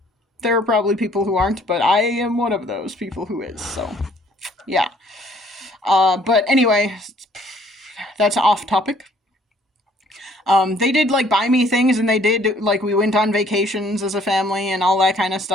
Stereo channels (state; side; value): normal; both; correlation 0.61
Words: There are probably people who aren't, but I am one of those people who is, so, yeah. But anyway, that's off topic. They did, buy me things, and they did, we went on vacations as a family and all that kind of